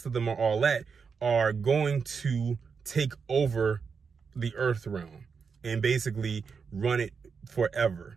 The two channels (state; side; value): quieter; left; 5.7 dB